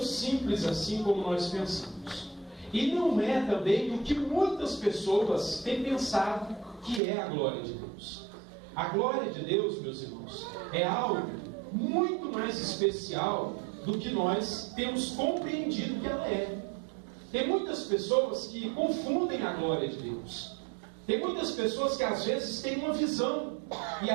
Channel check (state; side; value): drops out; left; at 7.0 s